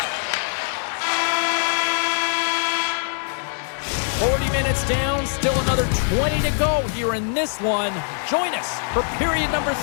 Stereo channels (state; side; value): silent; right; digital silence